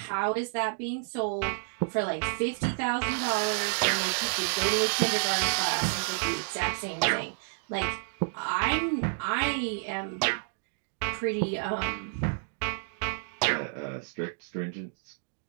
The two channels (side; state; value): left; silent; digital silence